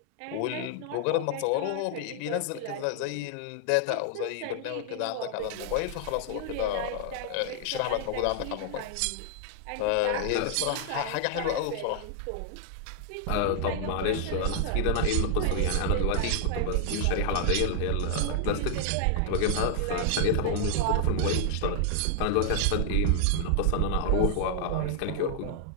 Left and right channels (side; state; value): both; different; correlation 0.00